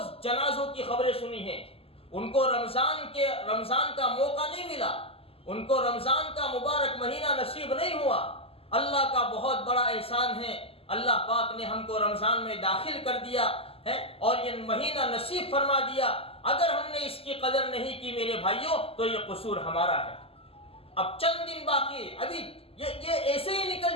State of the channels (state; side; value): late; right; 0.28 ms